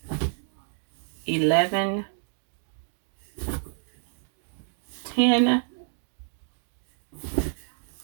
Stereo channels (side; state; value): left; silent; digital silence